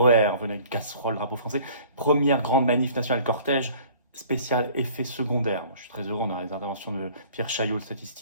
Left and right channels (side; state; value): both; inverted; correlation -0.51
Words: venez avec une casserole, drapeau français, première grande manif nationale cortège, spécial effet secondaire. Je suis très heureux, on a les interventions de Pierre Chaillot, le